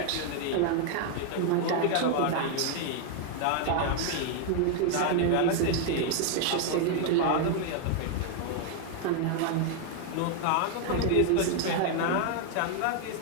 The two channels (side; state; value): both; different; correlation 0.00